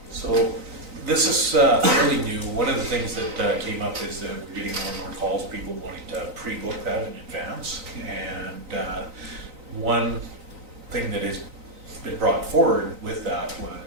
So this is fairly new. One of the things that came up is that we're getting more and more calls, people wanting to pre-book that in advance. And one thing that is been brought forward with that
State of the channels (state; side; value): late; left; 3.9 ms